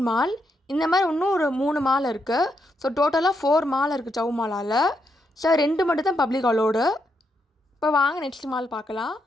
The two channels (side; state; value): both; normal; correlation 0.80